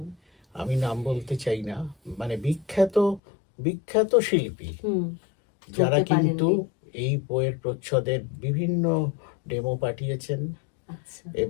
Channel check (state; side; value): drops out; right; at 3.2 s